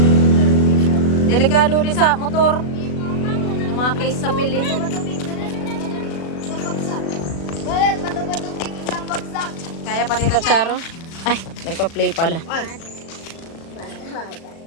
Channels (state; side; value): late; right; 36 ms